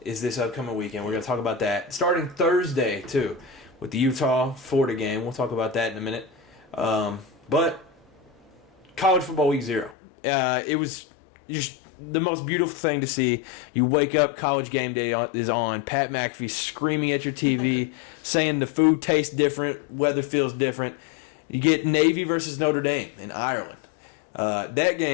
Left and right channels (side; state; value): right; drops out; at 10.0 s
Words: is this upcoming weekend. We're going to talk about that. Starting Thursday, too, with the Utah-Florida game. We'll talk about that in a minute. But college football week 0. It was just the most beautiful thing to see. You wake up, college game day is on. Pat McAfee screaming at your TV, saying the food tastes different, weather feels different. You get Navy versus Notre Dame in Ireland. That